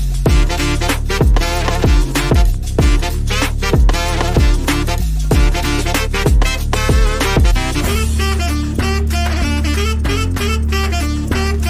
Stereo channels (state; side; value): identical; both; correlation 1.00